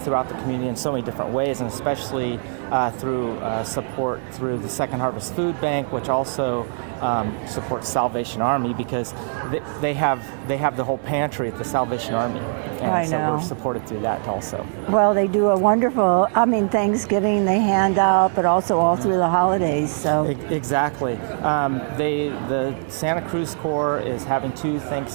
the community in so many different ways, and especially through support through the Second Harvest Food Bank, which also supports Salvation Army, because they have the whole pantry at the Salvation Army, and so we're supported through that also. Well, they do a wonderful, Thanksgiving they hand out, but also all through the holidays. So exactly. The Santa Cruz Corps is having two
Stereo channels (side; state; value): left; silent; 64 dB below the other